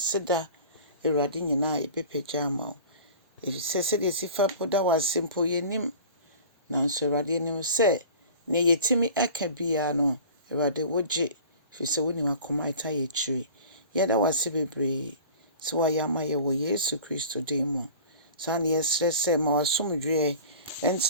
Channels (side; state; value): both; inverted; correlation -0.41